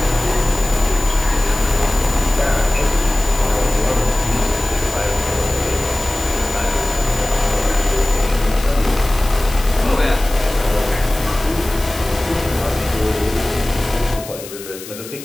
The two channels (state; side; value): noise; left; hiss, 14 dB below the sound